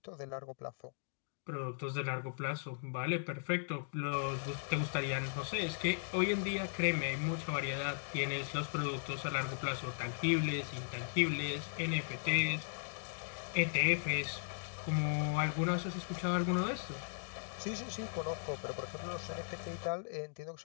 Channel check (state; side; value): silent; right; digital silence